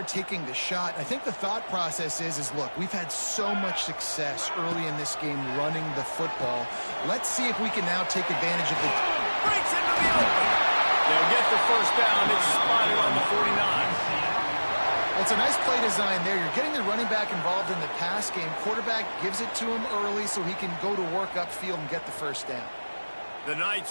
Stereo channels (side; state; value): both; inverted; correlation -1.00